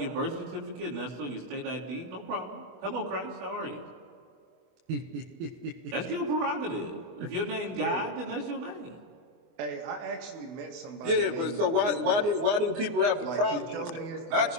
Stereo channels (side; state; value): left; late; 24 ms